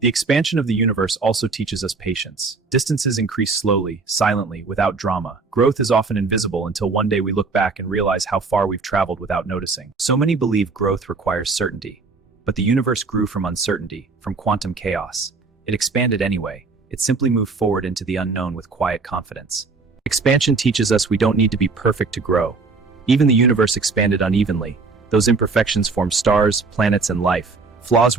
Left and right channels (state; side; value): quieter; left; 4.2 dB